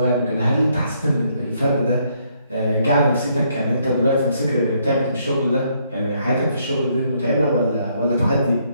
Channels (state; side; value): inverted; both; correlation -0.71